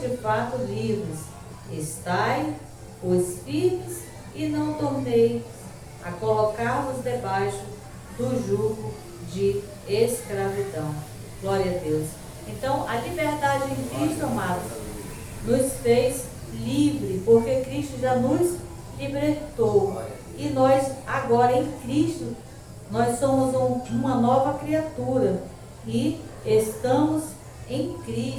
de fato livres. Estai, pois, firmes e não torneis a colocar-vos debaixo do jugo de escravidão. Glória a Deus. Então, a liberdade em Cristo, amados, nos fez livre, porque Cristo já nos libertou. E nós, agora em Cristo, nós somos uma nova criatura e estamos em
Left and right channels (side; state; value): both; identical; correlation 1.00